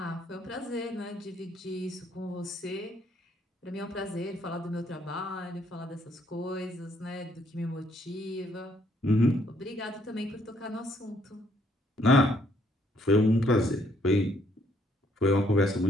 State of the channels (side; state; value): both; normal; correlation 0.68